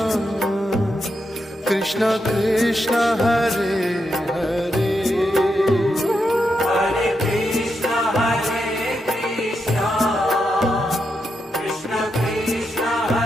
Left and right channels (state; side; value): normal; both; correlation 0.84